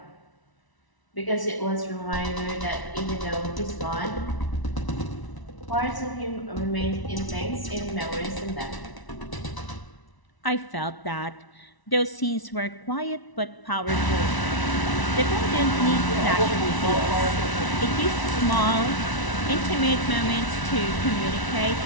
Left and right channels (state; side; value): late; right; 1.0 ms